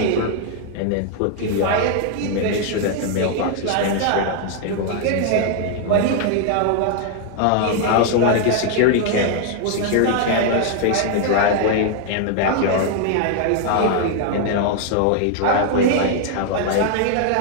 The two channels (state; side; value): different; both; correlation 0.00